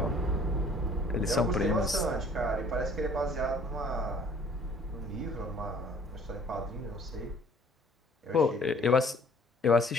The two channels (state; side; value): normal; both; correlation 0.55